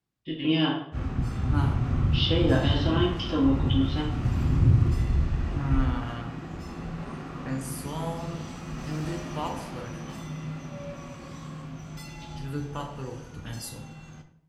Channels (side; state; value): both; identical; correlation 1.00